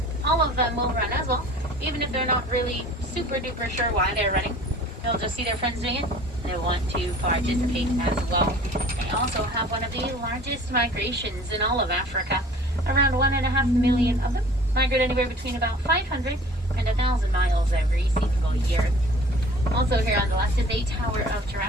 all of them will run as well, even if they're not really super duper sure why they're running. They'll just see their friends doing it, and they want to participate as well. They also have one of the largest migrations in all of Africa. Around 1.5 million of them migrate anywhere between about 500 and 1,000 miles every single year. Also here on the left is a tower of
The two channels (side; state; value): both; normal; correlation 0.48